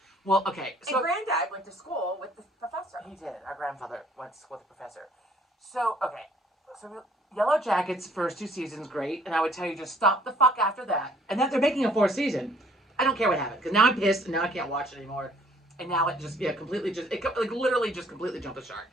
Well, okay. So and Granddad went to school with the professor. He did. Our grandfather went to school with the professor. So okay, so Yellow Jackets first 2 seasons great, and I would tell you just stop the fuck after that. And then they're making a 4th season. I don't care what happened because now I'm pissed and now I can't watch it anymore. And now it just completely literally just completely jumped the shark.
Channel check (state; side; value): normal; both; correlation 0.60